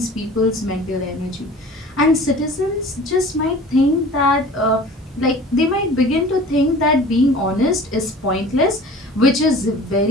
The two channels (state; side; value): normal; both; correlation 0.43